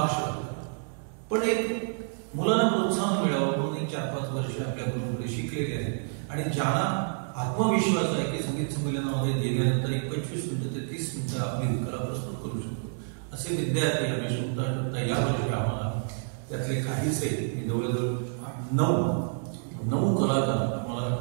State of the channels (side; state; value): left; silent; 59 dB below the other